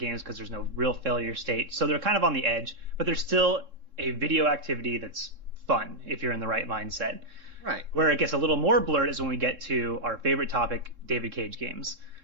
because there's no real failure state. So they're kind of on the edge, but they're still a video activity that's fun if you're in the right mindset. Right. Where it gets a little more blurred is when we get to our favorite topic, David Cage games.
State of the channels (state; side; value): late; left; 3.7 ms